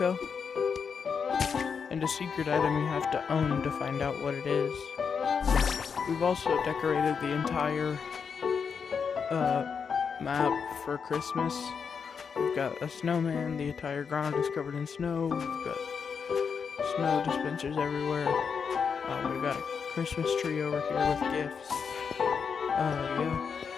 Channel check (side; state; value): right; quieter; 6.2 dB